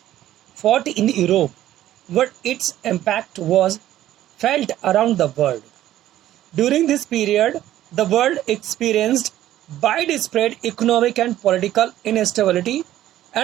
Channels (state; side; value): quieter; left; 13.3 dB